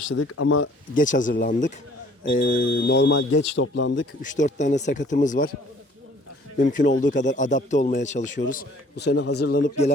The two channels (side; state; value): both; normal; correlation 0.56